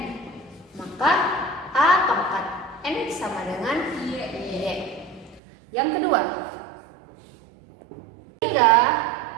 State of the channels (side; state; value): left; drops out; at 5.4 s